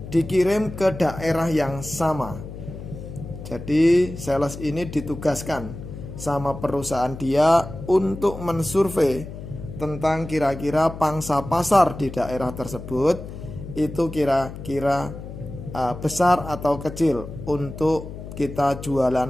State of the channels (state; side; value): noise; left; hum, 11 dB below the sound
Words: dikirim ke daerah yang sama. Jadi sales ini ditugaskan sama perusahaan dia untuk mensurvei tentang kira-kira pangsa pasar di daerah tersebut itu kira-kira besar atau kecil untuk kita